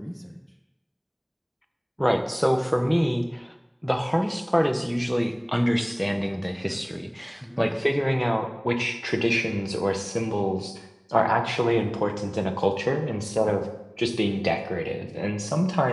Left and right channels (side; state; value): both; identical; correlation 1.00